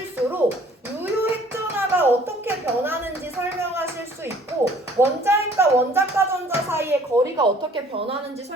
유효핵전하가 어떻게 변하는지 설명하실 수 있고, 원자핵과 원자과 전자 사이의 거리가 어떻게 변하는지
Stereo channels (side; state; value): both; normal; correlation 0.55